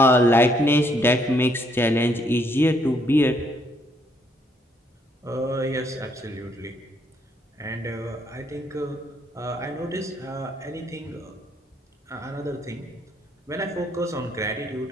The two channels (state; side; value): normal; both; correlation 0.70